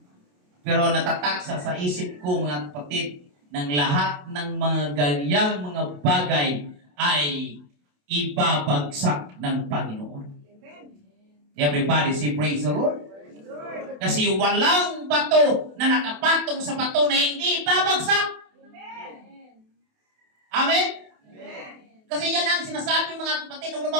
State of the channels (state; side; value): late; left; 28 ms